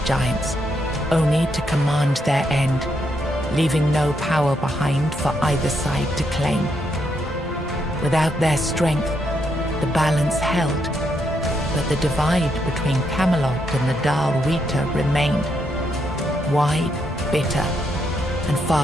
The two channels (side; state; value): both; normal; correlation 0.78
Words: giants, only to command their end, leaving no power behind for either side to claim. Without their strength, the balance held, but the divide between Camelot and the Dal Rita remained, wide, bitter, and